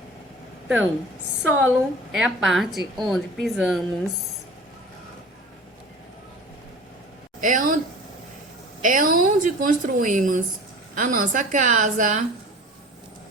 Então, solo é a parte onde pisamos. É onde construímos a nossa casa.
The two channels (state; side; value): normal; both; correlation 0.40